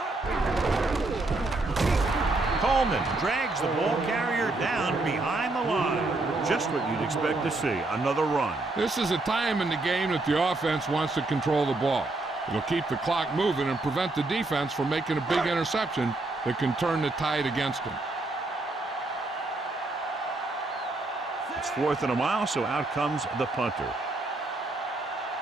Coleman drags the ball carrier down behind the line. Just what you'd expect to see. Another run. This is a time in the game that the offense wants to control the ball. It'll keep the clock moving and prevent the defense from making a big interception that can turn the tide against them. It's 4th and a mile, so out comes the punter.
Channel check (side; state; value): left; quieter; 3.0 dB